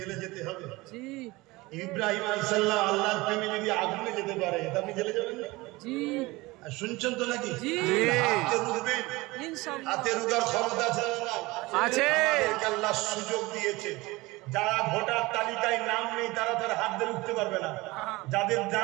যেতে হবে। জি। ইব্রাহিম আলাইহিস সালাম আল্লাহর প্রেমে যদি আগুনে যেতে পারে, তা আপনি জেলে যাবেন না? জি। আর শুনছেন তো নাকি? জি। হাতে রুখবেন, ইনশাআল্লাহ। হাতে রুখার ক্ষমতা আছে না? আছে। আমাদেরকে আল্লাহ সুযোগ দিয়েছে। যারা ভোটার তালিকায় নাম নেই তারা তার হাত দিয়ে উঠতে পারবে না। যাদের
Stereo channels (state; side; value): quieter; left; 21.6 dB